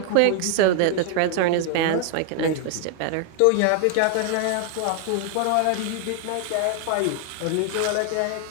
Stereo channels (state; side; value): different; both; correlation 0.00